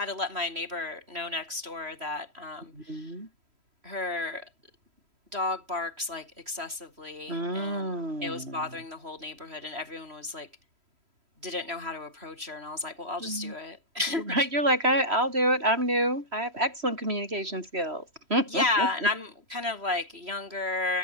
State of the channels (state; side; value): late; left; 3.1 ms